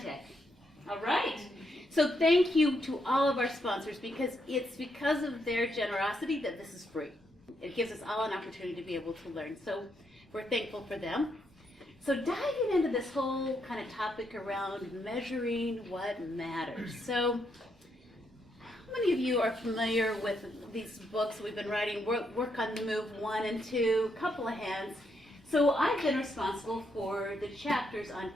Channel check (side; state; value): both; normal; correlation 0.78